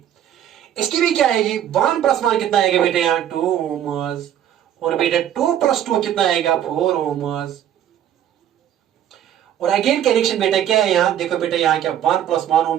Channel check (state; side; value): quieter; left; 10.6 dB